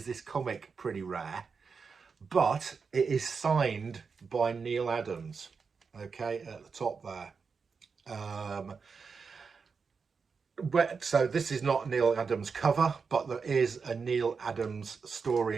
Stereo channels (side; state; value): left; quieter; 5.3 dB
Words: this comic pretty rare, but it is signed by Neal Adams. Okay, at the top there. So this is not Neal Adams cover, but there is a Neal Adams story